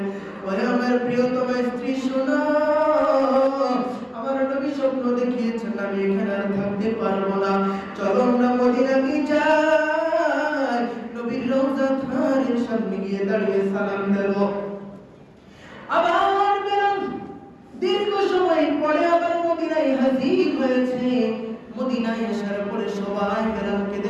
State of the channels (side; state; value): both; identical; correlation 1.00